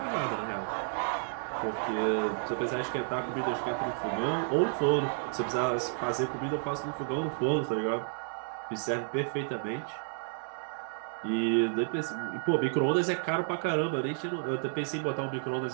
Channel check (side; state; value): left; silent; digital silence